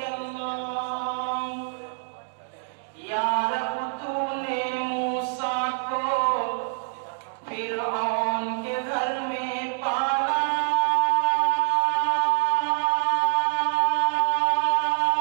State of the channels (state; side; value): silent; left; digital silence